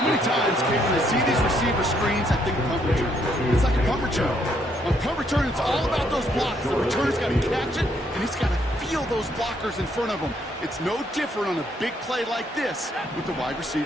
many times, Kate, when I see these receiver screens, I think punt return. It's like a punt return. On punt return, it's all about those blocks. The returner's got to catch it, and he's got to feel those blockers in front of him. It's no different on a big play like this with the wide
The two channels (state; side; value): normal; both; correlation 0.71